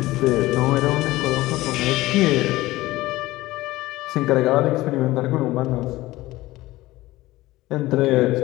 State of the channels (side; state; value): right; quieter; 18.0 dB